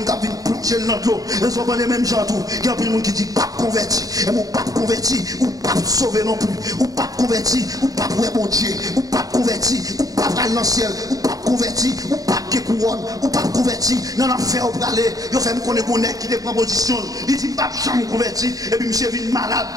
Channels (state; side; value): late; left; 0.18 ms